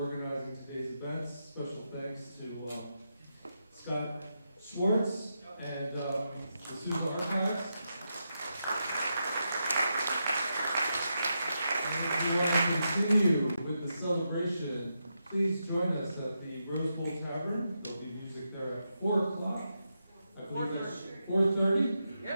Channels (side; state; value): both; inverted; correlation -0.85